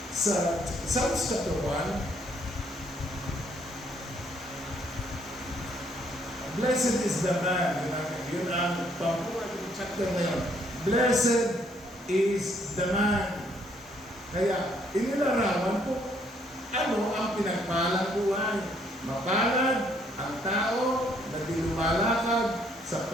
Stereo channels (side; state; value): both; normal; correlation 0.68